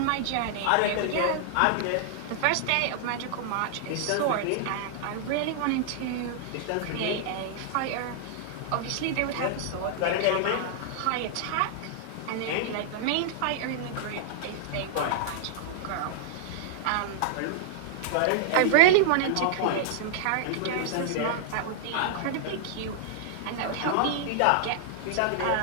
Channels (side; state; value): both; different; correlation -0.01